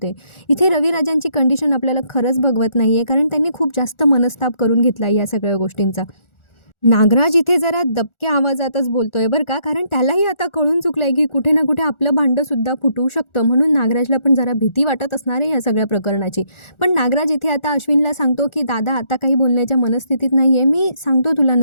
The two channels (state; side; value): late; right; 1.4 ms